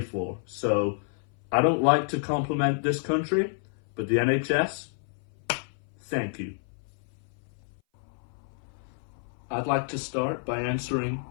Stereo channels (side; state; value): right; silent; 57 dB below the other